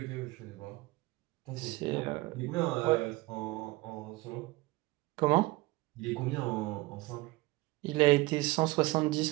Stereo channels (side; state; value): left; quieter; 21.1 dB